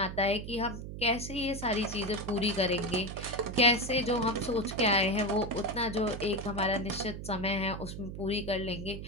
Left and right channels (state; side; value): noise; right; hum, 8 dB below the sound